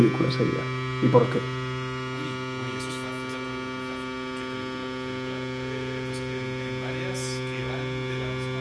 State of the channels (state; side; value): identical; both; correlation 1.00